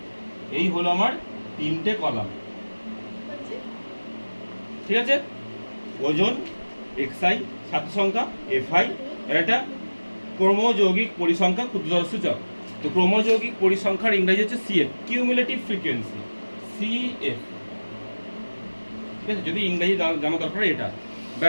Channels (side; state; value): both; inverted; correlation -1.00